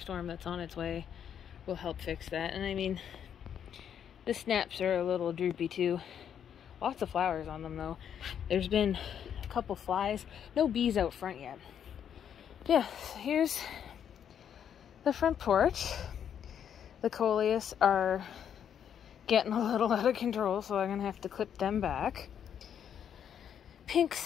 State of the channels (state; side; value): quieter; right; 8.7 dB